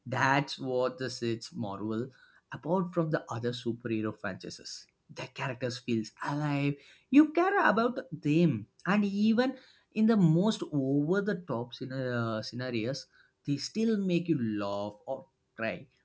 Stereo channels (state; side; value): identical; both; correlation 1.00